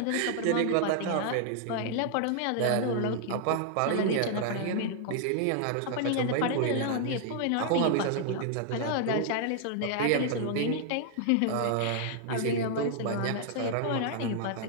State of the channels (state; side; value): different; both; correlation 0.00